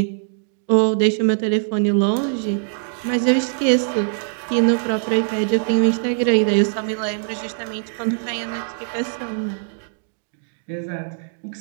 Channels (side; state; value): left; silent; digital silence